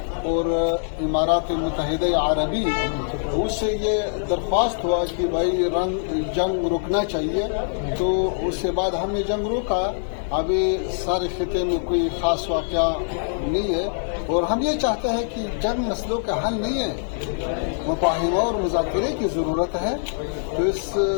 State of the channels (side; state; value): right; silent; 58 dB below the other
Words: اور امارات متحدہ عربی، اس سے یہ درخواست ہوا کہ بھائی جنگ رکنا چاہیے. تو اس کے بعد ہم نے جنگ روکا. ابھی سارے خطے میں کوئی خاص واقعہ نہیں ہے اور ہم یہ چاہتے ہیں کہ جنگ مسئلوں کا حل نہیں ہے، مفاہمہ اور مذاکرے کی ضرورت ہے. تو اس